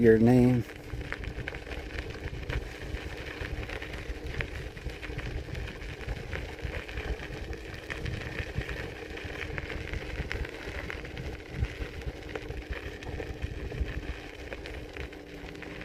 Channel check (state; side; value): identical; both; correlation 1.00